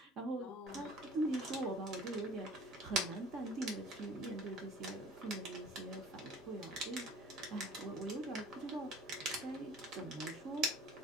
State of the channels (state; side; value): normal; both; correlation 0.49